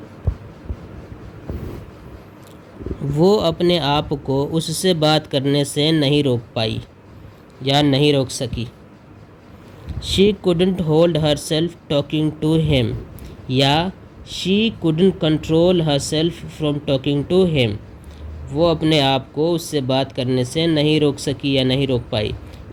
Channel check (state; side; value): identical; both; correlation 1.00